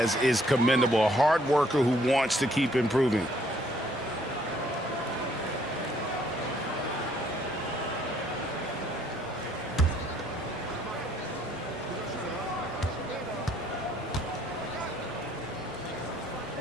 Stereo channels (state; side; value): normal; both; correlation 0.65